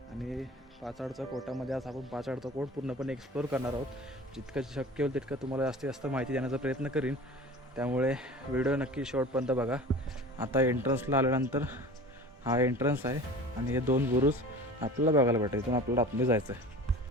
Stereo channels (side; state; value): both; normal; correlation 0.39